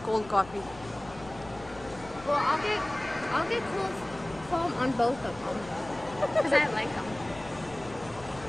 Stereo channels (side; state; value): left; noise; rumble, 18 dB below the sound